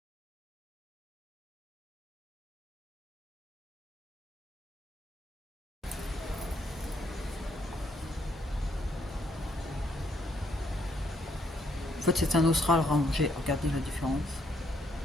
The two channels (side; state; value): both; normal; correlation 0.72